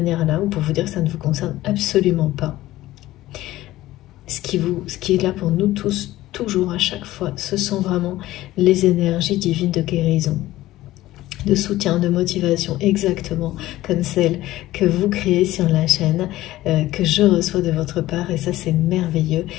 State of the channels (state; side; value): quieter; right; 16.0 dB